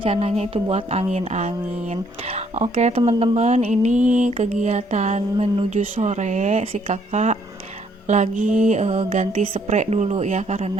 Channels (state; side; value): normal; both; correlation 0.67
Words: itu buat angin-angin. Oke teman-teman, ini kegiatan menuju sore, si kakak lagi ganti spray dulu ya,